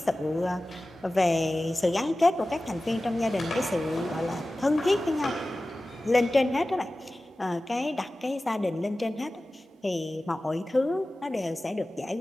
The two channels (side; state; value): both; normal; correlation 0.96